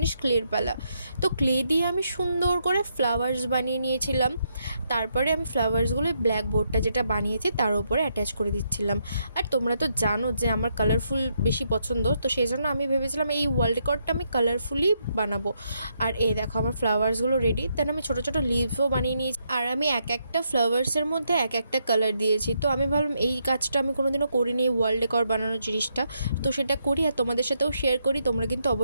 ক্লের পালা। তো ক্লে দিয়ে আমি সুন্দর করে ফ্লাওয়ার্স বানিয়ে নিয়েছিলাম। তারপরে আমি ফ্লাওয়ার্সগুলো ব্ল্যাক বোর্ডটা যেটা বানিয়েছি তার উপরে অ্যাটাচ করে দিচ্ছিলাম। আর তোমরা তো জানো যে আমার কালারফুল বেশি পছন্দ, তো সেই জন্য আমি ভেবেছিলাম এই ওয়াল ডেকরটা আমি কালারফুলি বানাবো। আর এই দেখো আমার ফ্লাওয়ার্সগুলো রেডি। দেন আমি ছোটো ছোটো লিভসও বানিয়ে নিয়েছি। আর আমি এক একটা ফ্লাওয়ার্সের মধ্যে এক একটা কালার দিয়েছি। তো আমি ভাবলাম এই কাজটা আমি কোনোদিনও করিনি, এই ওয়াল ডেকর বানানোর জিনিসটা, তো সেটা করি আর তোমাদের সাথেও শেয়ার করি। তোমরা কিন্তু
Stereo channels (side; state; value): both; inverted; correlation -0.78